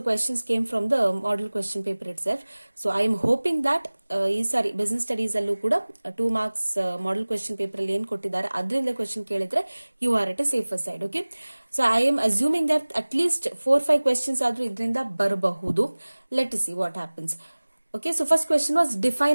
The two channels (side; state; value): both; inverted; correlation -1.00